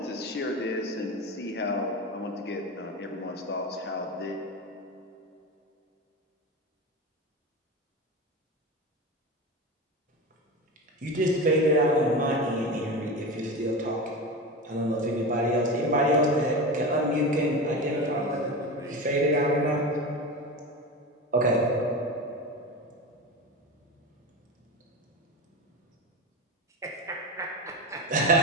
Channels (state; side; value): normal; both; correlation 0.25